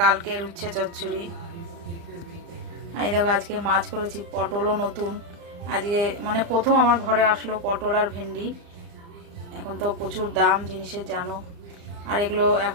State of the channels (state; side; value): late; left; 35 ms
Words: কালকের উচ্ছে চচ্চড়ি। আর এই দেখো, আজকে মাছ করেছি, পটলও নতুন আজকে, মানে প্রথম আমার ঘরে আসলো পটল আর ভেন্ডি। এখন তো প্রচুর দাম জিনিসের, জানো। আর এগুলো